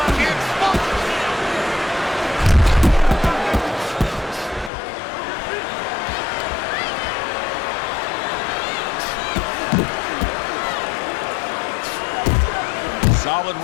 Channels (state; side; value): drops out; right; at 4.7 s